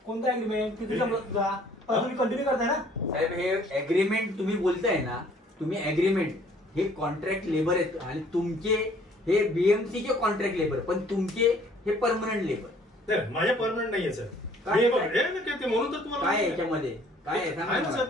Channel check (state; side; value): normal; both; correlation 0.58